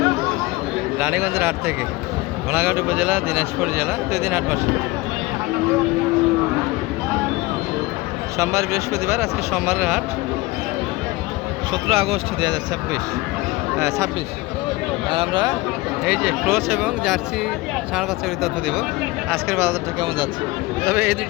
রানীগঞ্জের হাট থেকে ঘোড়াঘাট উপজেলা, দিনাজপুর জেলা, 2 দিন হাট বসে। সোমবার, বৃহস্পতিবার। আজকে সোমবারের হাট, 17 আগস্ট 2026। আর আমরা এই যে ক্রস এবং জার্সি ষাঁড় বাচ্চাগুলির তথ্য দেবো। আজকের বাজারটা কেমন যাচ্ছে। তবে এই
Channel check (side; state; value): right; quieter; 21.1 dB